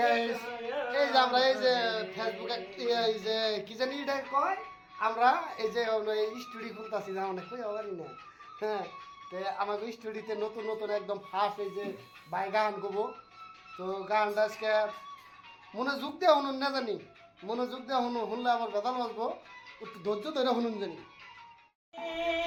গাইস এই যে আমরা এই যে ফেসবুকে এই যে কি জানি এটা কয় আমরা এই যে স্টুডিও খুলতাছি না অনেক কই আবার না হ্যাঁ তে আমাকে স্টুডিওতে নতুন নতুন একদম ফার্স্ট এই যে বাই গান গাবো তো গানটা আজকে মনোযোগ দিয়ে শুনুন না জানি মনোযোগ দিয়ে শুনলে আমার বেদাল বাজবো একটু ধৈর্য ধরে শুনুন জানি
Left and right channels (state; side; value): identical; both; correlation 1.00